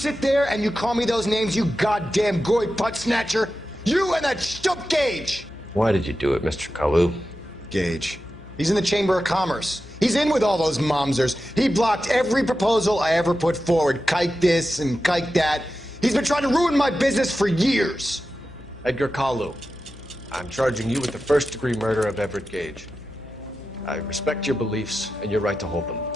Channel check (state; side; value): noise; left; hum, 19 dB below the sound